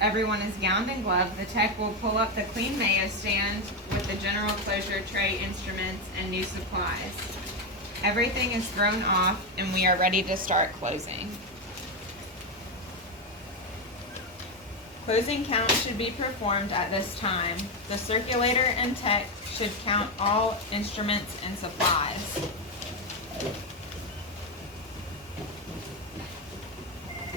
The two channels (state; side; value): normal; both; correlation 0.09